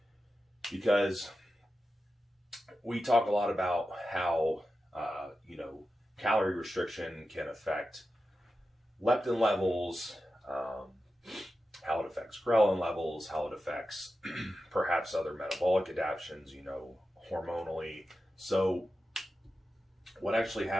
because we talk a lot about how calorie restriction can affect leptin levels, how it affects ghrelin levels, how it affects perhaps other metabolic adaptations, hormonally. So what actually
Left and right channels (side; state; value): both; normal; correlation 0.92